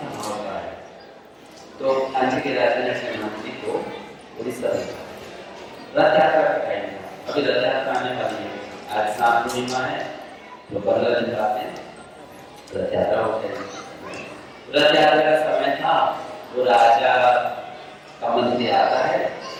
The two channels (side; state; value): both; identical; correlation 1.00